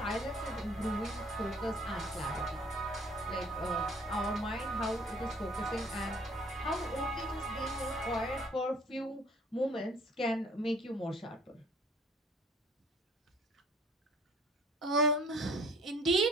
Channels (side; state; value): both; normal; correlation 0.54